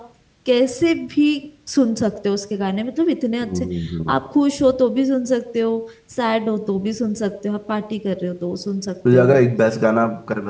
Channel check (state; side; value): identical; both; correlation 1.00